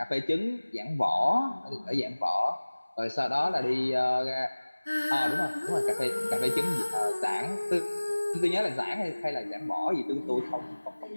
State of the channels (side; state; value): both; inverted; correlation -1.00